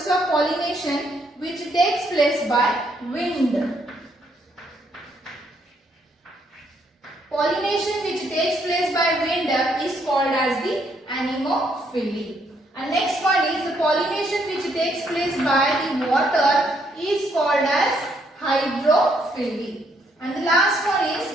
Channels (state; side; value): normal; both; correlation 0.72